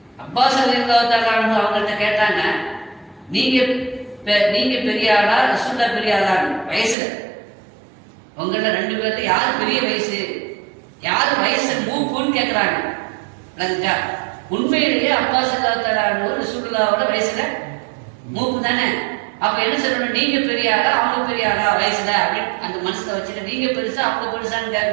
அப்பாஸ் ரலியல்லாஹு அவங்கள்ட்ட கேட்டாங்க, நீங்க பெரிய ஆளா ரசூலுல்லாஹ் பெரிய ஆளான்னு வயசுல உங்கள 2 பேர்ல யாரு பெரிய வயசு, யாரு வயசு மூப்புன்னு கேட்கிறாங்க. உண்மையிலேயே அப்பாஸ் ரலியல்லாஹு ரசூலுல்லாஹோட வயசுல மூப்பு தானே. அப்ப என்ன சொல்லணும், நீங்க பெரிய ஆளா அவங்க பெரிய ஆளா வயசுல அப்படின்னு அந்த மனசுல வச்சுட்டு, நீங்க பெருசா அவங்க பெருசான்னு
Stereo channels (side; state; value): left; drops out; at 7.0 s